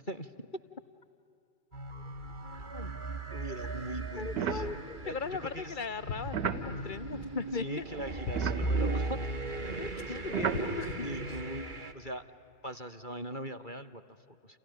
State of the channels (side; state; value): right; late; 2.3 ms